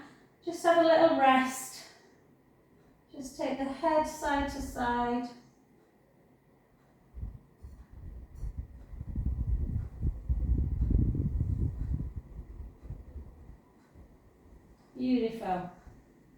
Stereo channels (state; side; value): identical; both; correlation 1.00